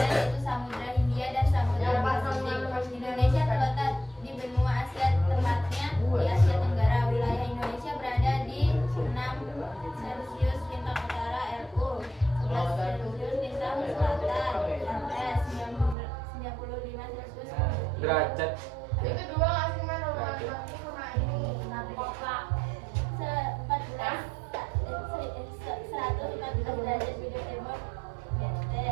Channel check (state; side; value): drops out; left; at 16.0 s